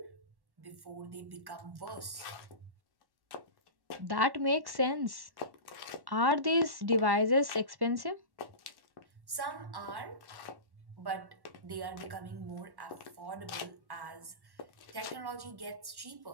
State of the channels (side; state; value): left; late; 1.1 ms